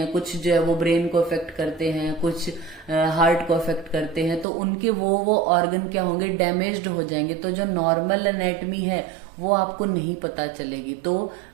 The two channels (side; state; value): left; drops out; at 4.5 s